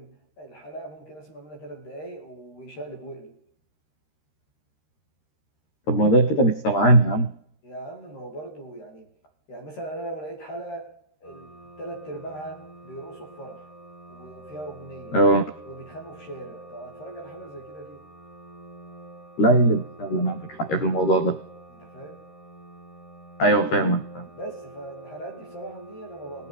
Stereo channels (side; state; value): right; late; 13 ms